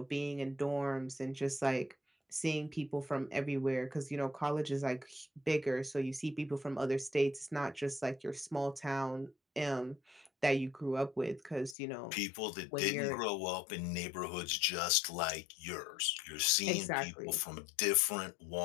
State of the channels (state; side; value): drops out; right; at 11.8 s